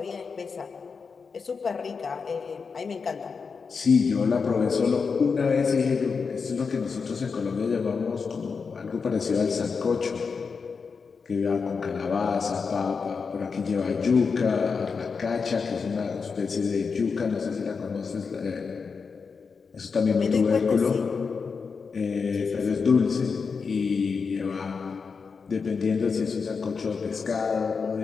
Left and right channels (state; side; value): quieter; right; 5.3 dB